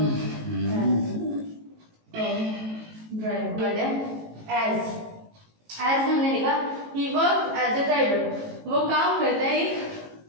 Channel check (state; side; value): late; left; 18 ms